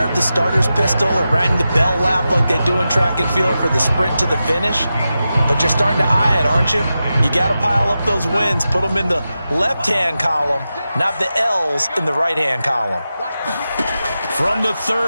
the starter's pistol or rang the bell lap like they do in track and field for the sprint to the finish, but you're starting to eye it, aren't you? You got to pile up those wins, put them in the left-hand column, not the L's in the right-hand column. From the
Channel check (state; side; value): inverted; both; correlation -0.91